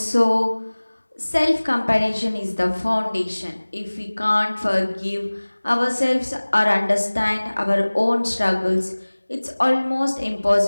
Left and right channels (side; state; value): both; inverted; correlation -1.00